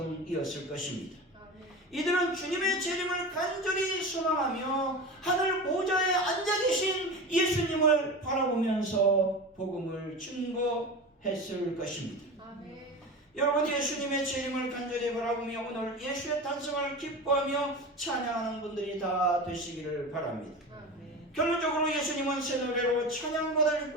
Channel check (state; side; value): normal; both; correlation 0.28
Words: 것입니다. 아멘. 이들은 주님의 재림을 간절히 소망하며 하늘 보좌에 앉아 계신 예수님을 바라보면서 복음을 증거했을 것입니다. 아멘. 여러분, 예수님의 재림을 간절히 바라보며 오늘 예수의 탄생을 기뻐하며 찬양하는 분들이 다 되시기를 바랍니다. 아멘. 결론적으로 예수님은 새 노래로